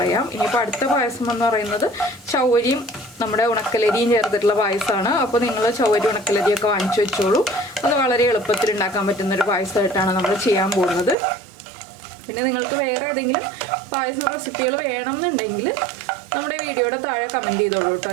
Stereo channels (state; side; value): drops out; left; at 11.2 s